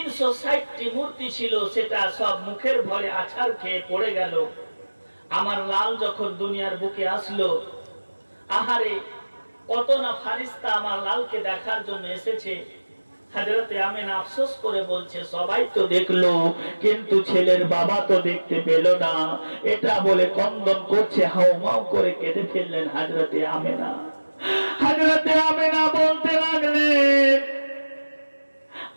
মূর্তি ছিল, সেটা সব মুখের ভরে আছাড় খেয়ে পড়ে গেল। আমার লাল যখন দুনিয়ার বুকে আসলো, আহারে কত না ফারিস্তা আমার লালকে দেখার জন্য এসেছে। হযরতে আমেনা আফসোস করে বলছে, সবাই তো দেখলো কিন্তু ছেলের বাবা তো দেখতে পেল না। এটা বলে কন্দন করছে, হাউমাউ করে কেঁদে ফেললেন হযরতে আমেনা। হযরতে আমেনা বলতে লাগলেন,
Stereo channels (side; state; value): both; inverted; correlation -1.00